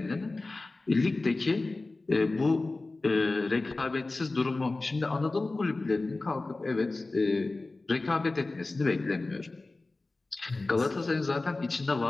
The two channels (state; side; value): quieter; right; 3.3 dB